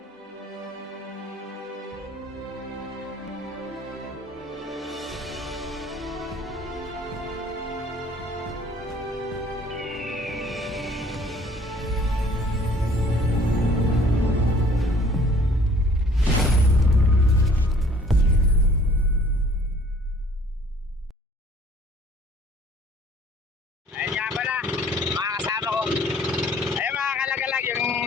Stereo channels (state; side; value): normal; both; correlation 0.55